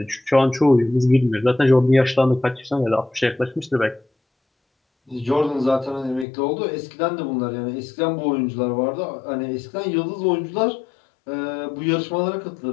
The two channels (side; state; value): right; drops out; at 6.2 s